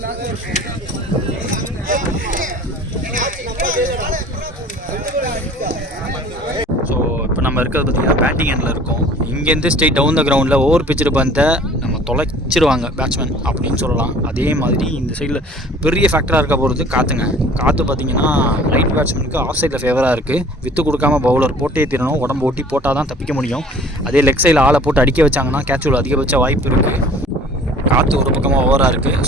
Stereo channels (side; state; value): both; normal; correlation 0.49